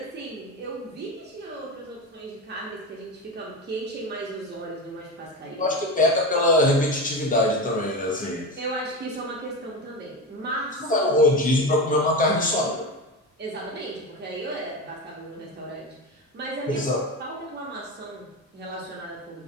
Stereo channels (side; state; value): both; normal; correlation 0.21